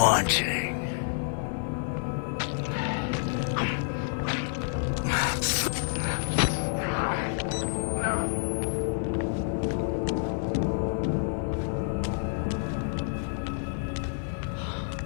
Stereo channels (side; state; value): right; silent; 58 dB below the other